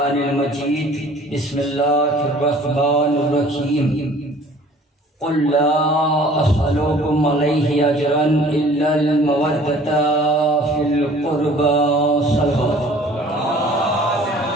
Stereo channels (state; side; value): normal; both; correlation 0.51